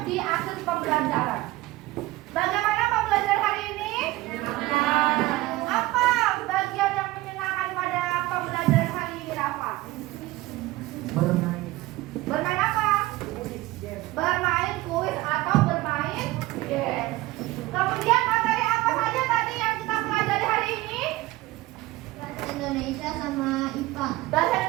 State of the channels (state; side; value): quieter; left; 18.6 dB